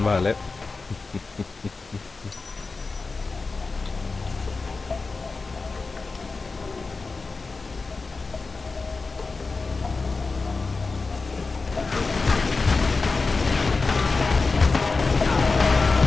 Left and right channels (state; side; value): quieter; right; 4.0 dB